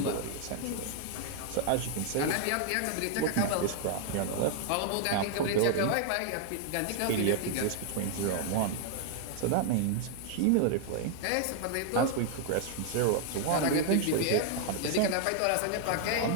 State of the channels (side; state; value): both; different; correlation 0.00